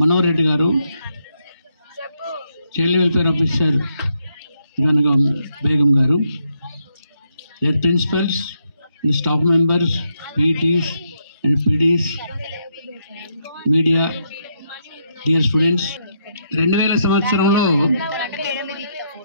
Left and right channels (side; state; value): both; inverted; correlation -0.77